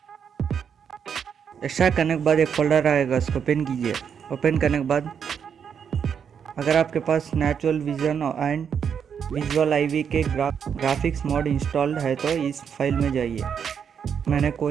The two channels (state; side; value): quieter; left; 7.4 dB